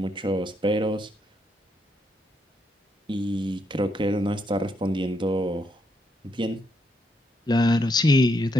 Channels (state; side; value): normal; both; correlation 0.77